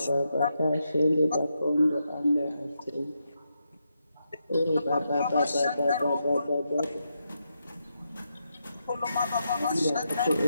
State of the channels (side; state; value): both; inverted; correlation -0.84